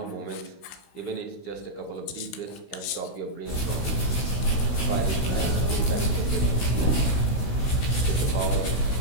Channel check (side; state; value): right; late; 16 ms